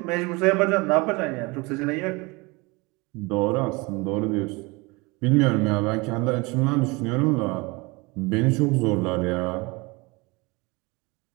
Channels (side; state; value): left; quieter; 25.6 dB